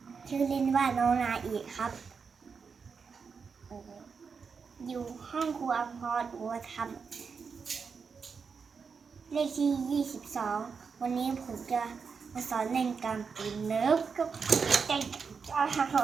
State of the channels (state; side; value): quieter; left; 5.6 dB